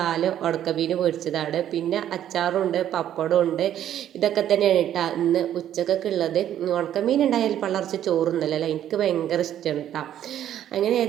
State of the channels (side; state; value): left; quieter; 11.0 dB